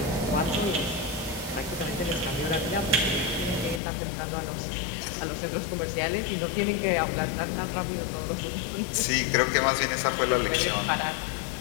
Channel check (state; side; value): drops out; right; at 3.8 s